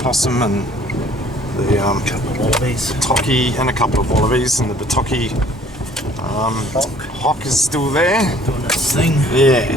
and the couple of wallabies, tocky and a couple of wallabies, and the tocky hawk is still there doing its thing.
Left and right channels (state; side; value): normal; both; correlation 0.56